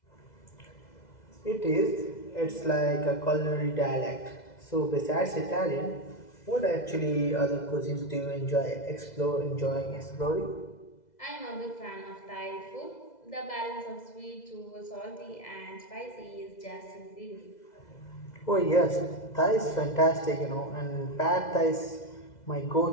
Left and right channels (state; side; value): late; right; 2.0 ms